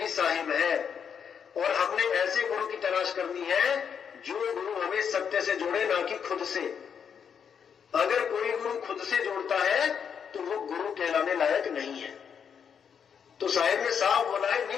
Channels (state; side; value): quieter; right; 7.3 dB